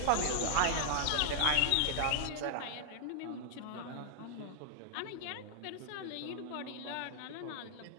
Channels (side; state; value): both; different; correlation -0.01